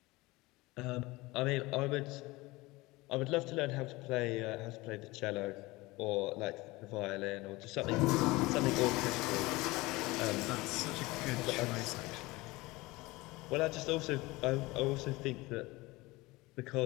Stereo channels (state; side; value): quieter; right; 21.5 dB